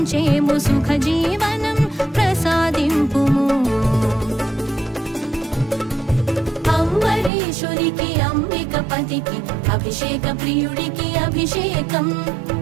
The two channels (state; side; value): drops out; left; at 7.3 s